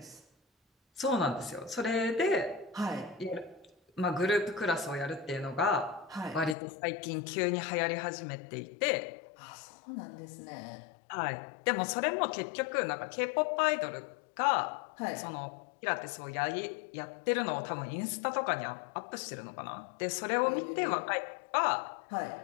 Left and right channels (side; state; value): right; drops out; at 6.6 s